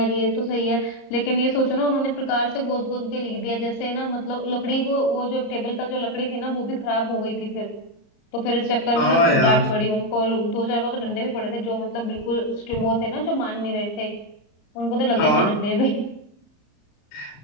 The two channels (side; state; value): right; late; 34 ms